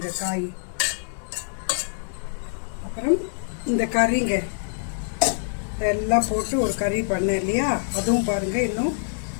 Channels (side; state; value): right; silent; 61 dB below the other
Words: காய். அப்புறம் இந்த கறிங்க இதெல்லாம் போட்டு ஒரு கறி பண்ணேன் இல்லையா, அதுவும் பாருங்கள் இன்னும்